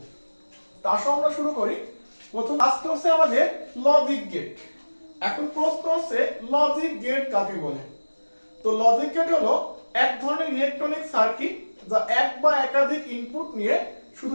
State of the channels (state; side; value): inverted; both; correlation -1.00